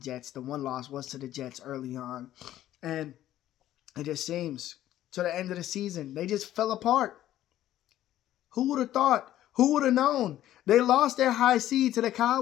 The one loss was to the Jets early on. And it just seems to the end of the season, they just fell apart. Who would have thought? Who would have known? They lost their high seed to the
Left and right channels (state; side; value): quieter; right; 13.1 dB